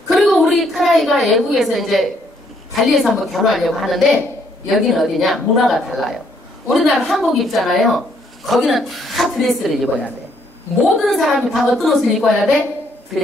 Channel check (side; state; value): both; normal; correlation 0.69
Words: 그리고 우리 큰아이가 외국에서 이제 발리에서 한번 결혼하려고 하는데 여기는 어디냐? 문화가 달라요. 우리나라 한복 입잖아요. 거기는 다 드레스를 입어야 돼. 모든 사람이 다 어떤 옷을 입어야 돼?